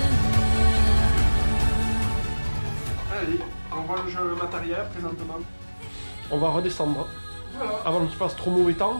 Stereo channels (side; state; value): both; inverted; correlation -1.00